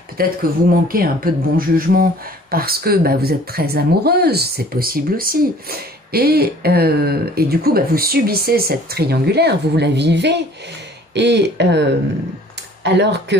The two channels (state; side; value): normal; both; correlation 0.52